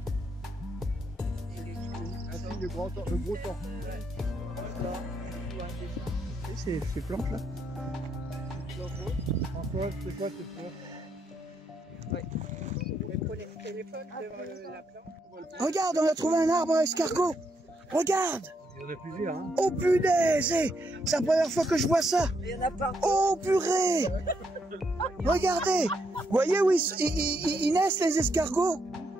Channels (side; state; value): both; normal; correlation 0.77